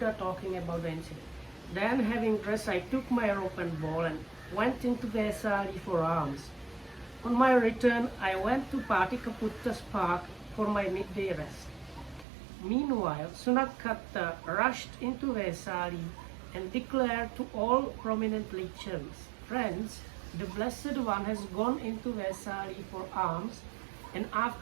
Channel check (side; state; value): left; drops out; at 12.2 s